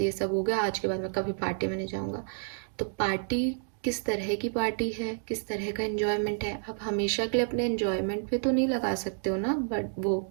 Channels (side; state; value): left; silent; digital silence